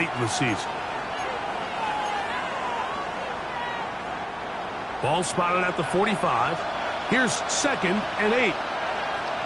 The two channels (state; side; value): identical; both; correlation 1.00